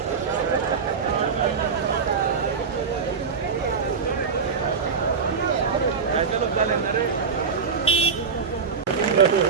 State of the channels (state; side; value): quieter; left; 5.7 dB